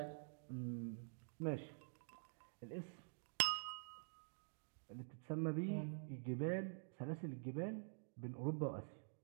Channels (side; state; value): left; silent; digital silence